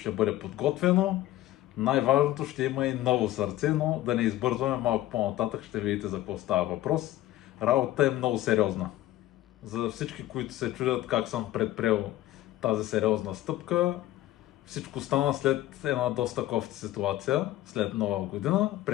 бъде подготвено. Най-важното, ще има и ново сърце, но да не избързваме, малко по-нататък ще видите за какво става въпрос. Работата е много сериозна. За всички, които се чудят как съм предприел тази сериозна стъпка, всичко стана след една доста кофти ситуация, след Нова година.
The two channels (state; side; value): quieter; right; 15.0 dB